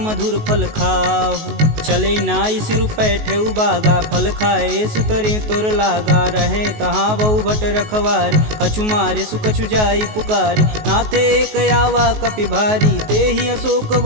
फल खाहु। चले नाई सिर पैठे उबागा फल खाए सुतरे तोर लागा। रहे तहाँ बहु भट रखवार कछु मारे सुकछु जाई पुकार। नाथे एक आवा कपि भारी ते ही अशोक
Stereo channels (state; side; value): late; left; 19 ms